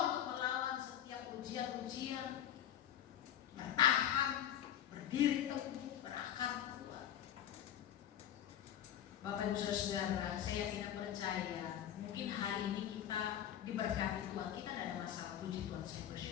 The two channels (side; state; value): right; quieter; 10.5 dB